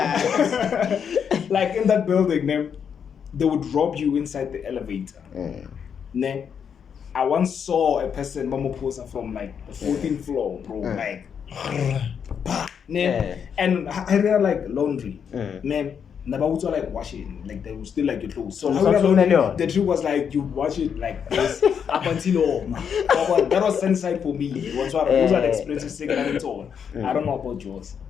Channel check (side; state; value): right; quieter; 7.4 dB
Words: Like in that building, they would rob you inside the elevator. I once saw a person, Mama Posa, from like the 14th floor, bro. Like, and I read like laundry. Nabaut like washing, like they will still like your clothes. So the trick was like you wash it like this up until that was Sunnyside for me. Those are the experiences taken all. I don't know about yours.